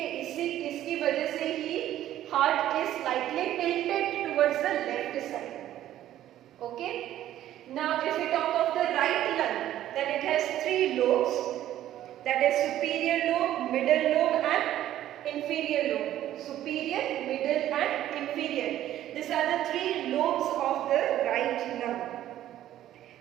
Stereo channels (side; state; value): left; quieter; 12.7 dB